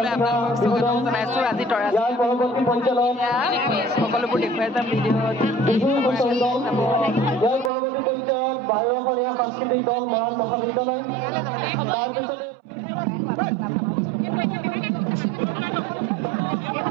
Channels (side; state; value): left; drops out; at 7.7 s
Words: আপোনালোকক স্বাগতম জনাইছোঁ আজি তৰাজী সকলোবোৰ দেখুৱাই যাম ভিডিঅ'ত সাংস্কৃতিক দল মৰাণ মহাবিদ্যালয়